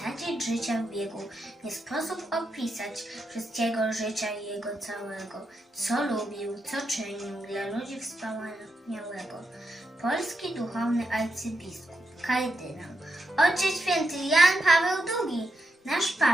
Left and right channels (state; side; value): normal; both; correlation 0.85